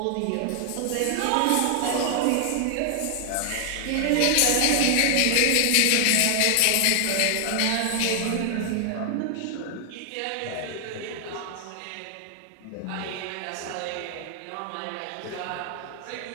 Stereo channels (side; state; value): both; different; correlation 0.00